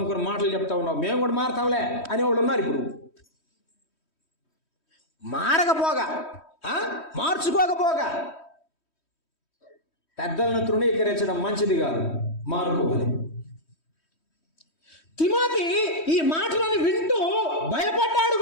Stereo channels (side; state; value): right; late; 3.1 ms